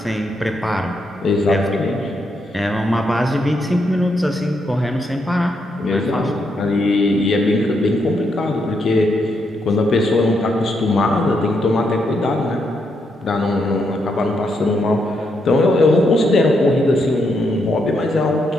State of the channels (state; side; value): normal; both; correlation 0.79